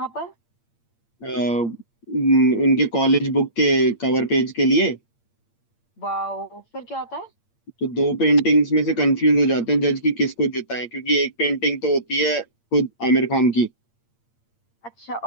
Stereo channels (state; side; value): late; right; 8.7 ms